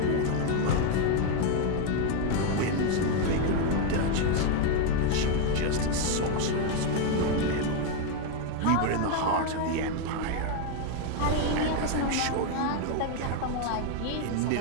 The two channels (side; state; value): both; different; correlation 0.01